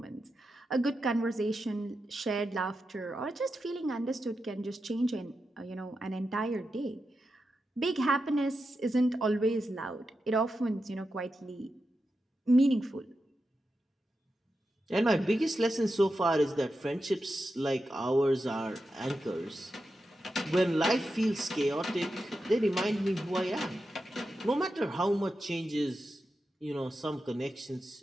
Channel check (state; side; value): normal; both; correlation 0.89